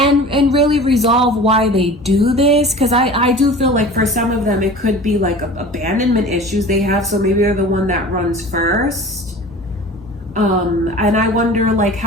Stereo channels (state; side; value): normal; both; correlation 0.39